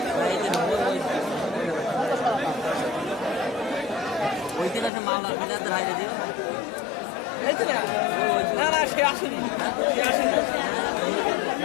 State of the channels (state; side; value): drops out; right; at 4.9 s